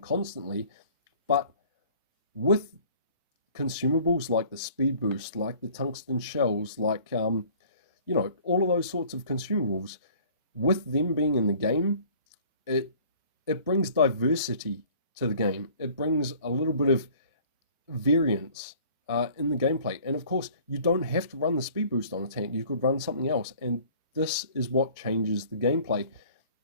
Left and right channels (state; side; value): inverted; both; correlation -0.51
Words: but with consumables like the speed boost, like the tungsten shells, like you know, all of those sorts of consumables, with them being in the game, it brings diversity to the game. It brings a little bit of variance in the gameplay. And of course, you don't have to run the speed boost on a tank. You could run something else. And this is what changes the gameplay.